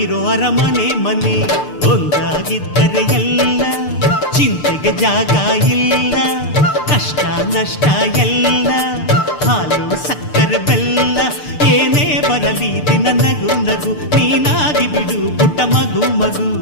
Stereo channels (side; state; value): right; late; 6.7 ms